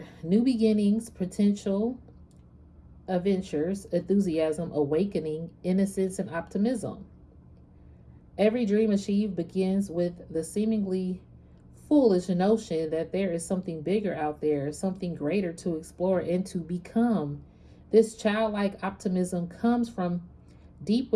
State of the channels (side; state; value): both; identical; correlation 1.00